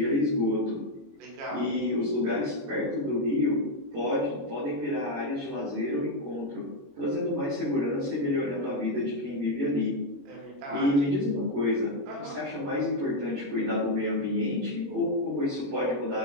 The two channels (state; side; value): late; left; 21 ms